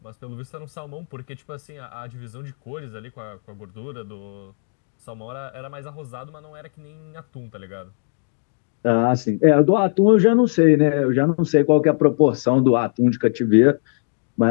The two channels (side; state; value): right; silent; digital silence